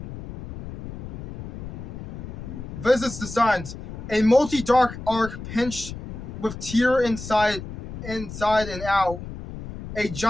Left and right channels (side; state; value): left; noise; rumble, 10 dB below the sound